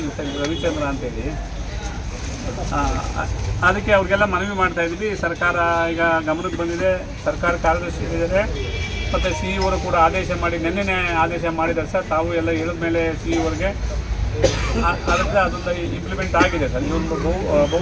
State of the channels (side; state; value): both; identical; correlation 1.00